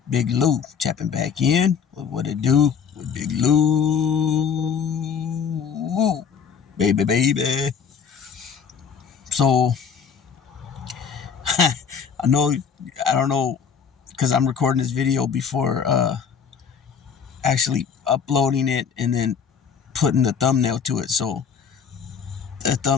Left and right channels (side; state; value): right; quieter; 6.9 dB